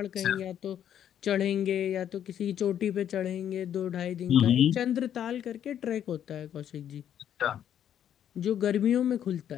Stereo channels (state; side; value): quieter; right; 9.9 dB